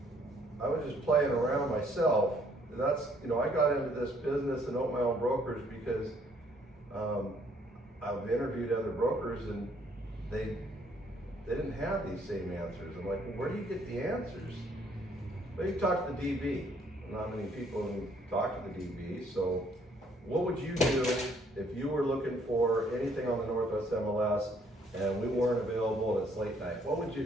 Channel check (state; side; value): normal; both; correlation 0.65